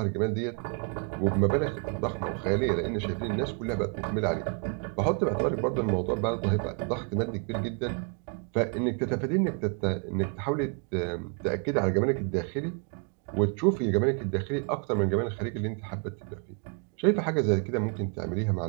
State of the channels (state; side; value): quieter; left; 39.3 dB